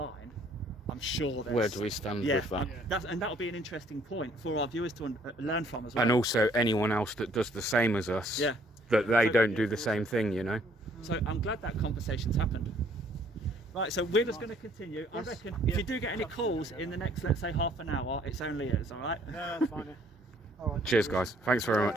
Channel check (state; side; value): normal; both; correlation 0.62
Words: I'm sure there's... Where do we stand with that? And that'll be an interesting point for our viewers to learn from as well. And also anyone else that does the same as us, that they don't do the same thing, you know. So I'm glad that conversation's happened. Right, so we're just going to continue. I reckon if you do get any calls in the next, let's say, half an hour, it's only us, all right? No, that's fine. All right. Cheers, guys. Thanks very